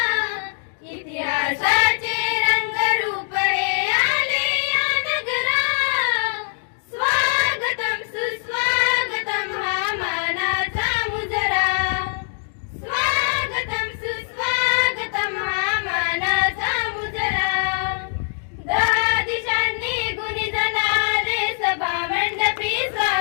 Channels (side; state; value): right; silent; 64 dB below the other